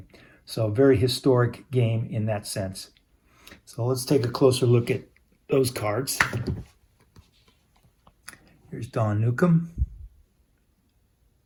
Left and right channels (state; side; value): identical; both; correlation 1.00